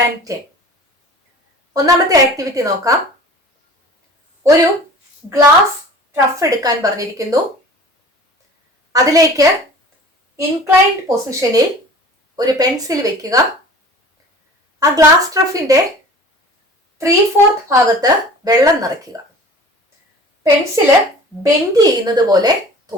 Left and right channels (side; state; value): both; normal; correlation 0.43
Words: ഒന്നാമത്തെ ആക്ടിവിറ്റി നോക്കാം. ഒരു ഗ്ലാസ് ട്രഫ് എടുക്കാൻ പറഞ്ഞിരിക്കുന്നു. അതിലേക്ക് ഇൻക്ലൈൻഡ് പൊസിഷനിൽ ഒരു പെൻസിൽ വെക്കുക. ആ ഗ്ലാസ് ട്രഫിന്റെ 3/4 ഭാഗത്ത് വെള്ളം നിറയ്ക്കുക. പെൻസില് ബെൻഡ് ചെയ്യുന്നത് പോലെ